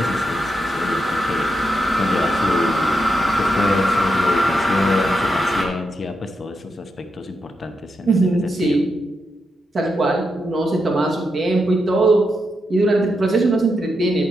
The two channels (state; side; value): normal; both; correlation 0.84